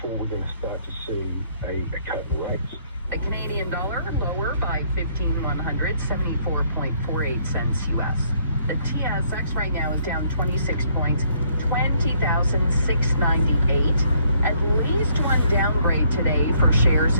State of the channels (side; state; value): both; inverted; correlation -0.67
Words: we're going to start to see a cut in rates. The Canadian dollar lower by 15,174.48 cents US. The TSX right now is down 26 points, 20,698. At least one downgrade today for shares